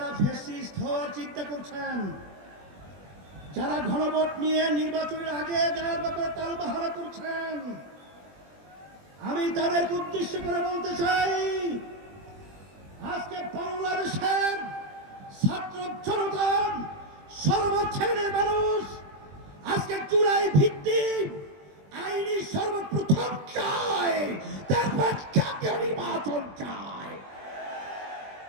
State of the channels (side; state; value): left; late; 20 ms